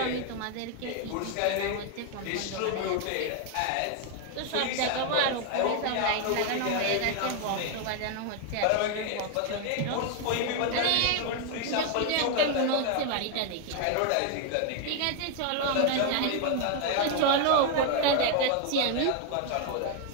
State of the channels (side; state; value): both; different; correlation 0.01